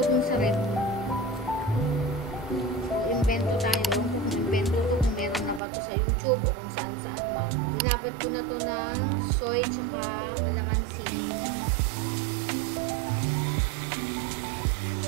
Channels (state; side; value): drops out; left; at 5.6 s